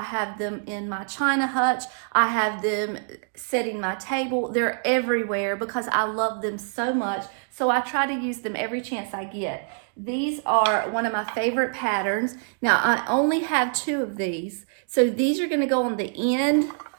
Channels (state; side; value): silent; left; digital silence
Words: have them in my china hutch. I have them setting my table. They're everywhere because I love them so much. So I try to use them every chance I get. These are one of my favorite patterns. Now, I only have 2 of these. So these are going to go on the end